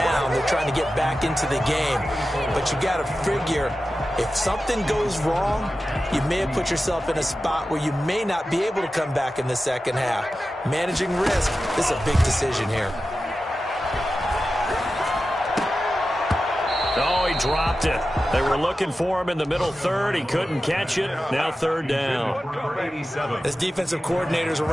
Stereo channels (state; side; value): normal; both; correlation 0.93